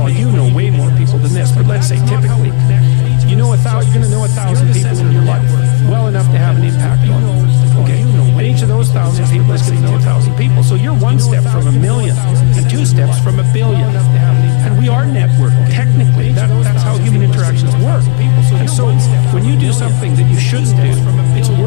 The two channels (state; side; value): quieter; right; 33.8 dB